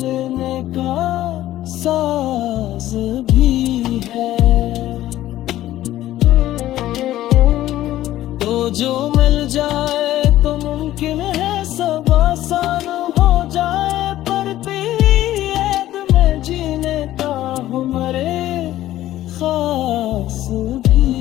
का साज भी है। तो जो मिल जाए तो मुमकिन है सब आसान हो जाए, पर तेरी याद में जीने का हमारे खास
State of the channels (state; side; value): quieter; right; 14.1 dB